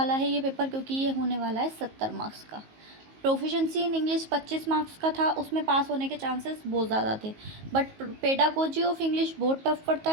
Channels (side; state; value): left; late; 19 ms